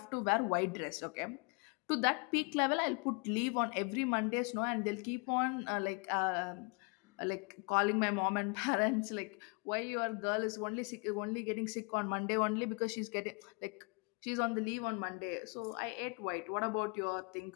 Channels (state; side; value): quieter; right; 33.1 dB